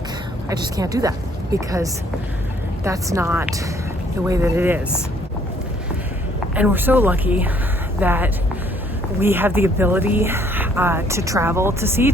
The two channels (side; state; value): both; normal; correlation 0.63